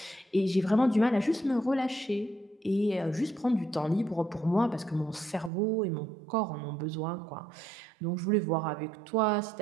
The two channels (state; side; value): drops out; left; at 5.5 s